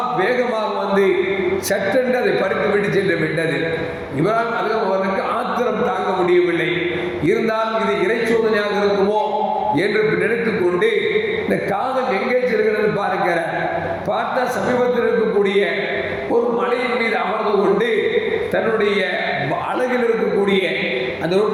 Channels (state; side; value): identical; both; correlation 1.00